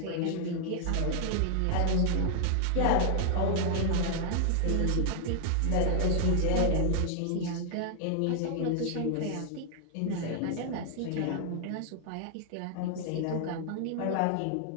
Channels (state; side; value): different; both; correlation 0.00